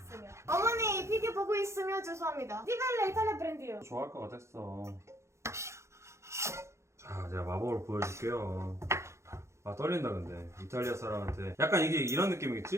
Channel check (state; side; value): late; left; 0.14 ms